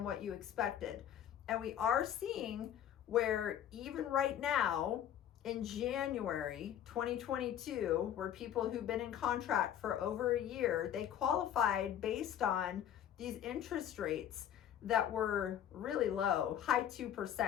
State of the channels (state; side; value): quieter; right; 10.2 dB